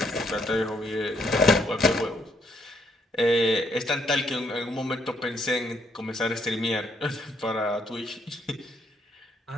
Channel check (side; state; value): both; normal; correlation 0.71